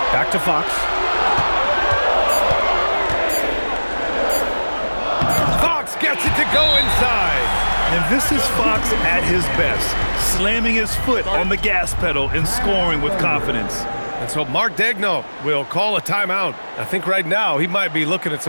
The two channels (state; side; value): inverted; both; correlation -1.00